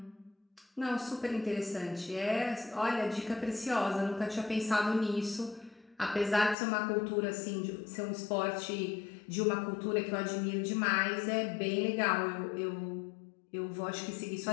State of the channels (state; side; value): drops out; right; at 6.6 s